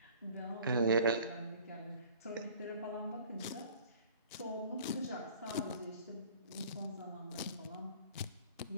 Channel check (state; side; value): inverted; both; correlation -0.50